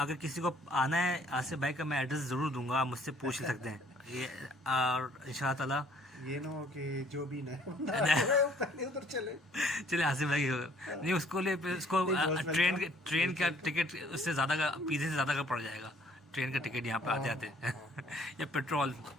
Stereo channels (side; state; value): both; normal; correlation 0.60